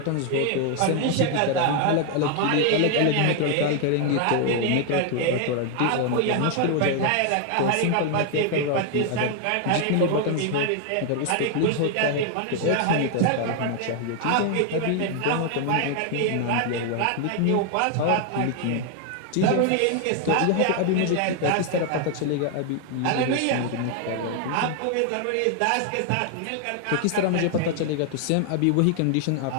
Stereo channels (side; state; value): both; different; correlation 0.00